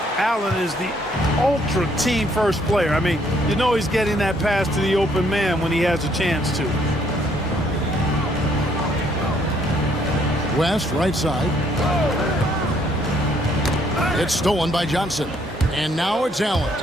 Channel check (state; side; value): normal; both; correlation 0.67